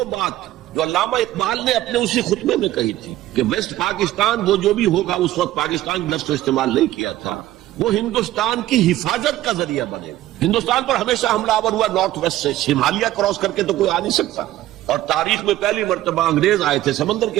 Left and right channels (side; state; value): left; quieter; 14.8 dB